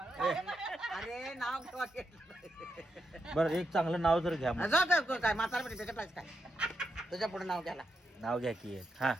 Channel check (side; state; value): both; normal; correlation 0.84